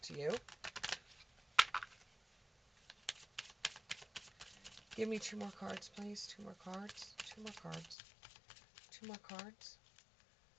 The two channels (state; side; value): drops out; right; at 8.0 s